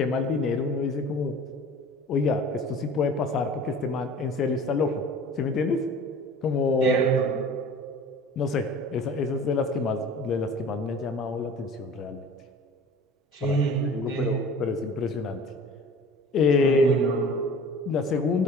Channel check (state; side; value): normal; both; correlation 0.43